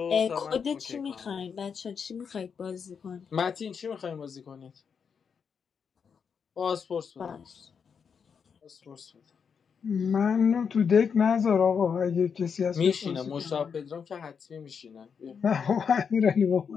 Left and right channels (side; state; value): right; quieter; 6.5 dB